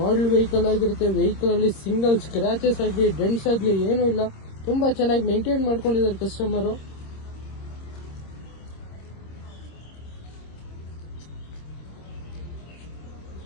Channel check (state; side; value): late; right; 26 ms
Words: ಮಾಡೆಲ್ ವೆಹಿಕಲ್ ಆಗಿರುತ್ತೆ. ವೆಹಿಕಲ್ ಅಲ್ಲಿ ಸಿಂಗಲ್ ಸ್ಕ್ರಾಚಸ್ ಆಗಲಿ, ಡೆಂಟ್ಸ್ ಆಗಲಿ ಏನೂ ಇಲ್ಲ. ತುಂಬಾ ಚೆನ್ನಾಗಿ ಮೇಂಟೈನ್ ಮಾಡ್ಕೊಂಡಿದ್ದಾರೆ ಕಸ್ಟಮರು.